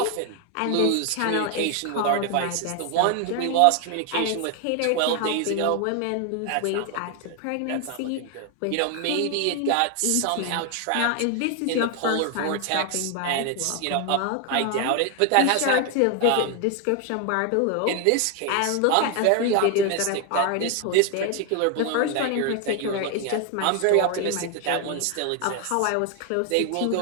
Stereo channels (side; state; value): both; different; correlation 0.01